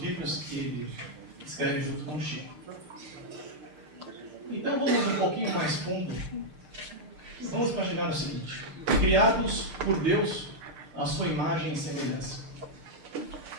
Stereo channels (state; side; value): late; left; 6.6 ms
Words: que ele escreve junto com o Chico. Então vamos um pouquinho mais fundo. Vamos imaginar o seguinte: criados por Deus à sua imagem e semelhança.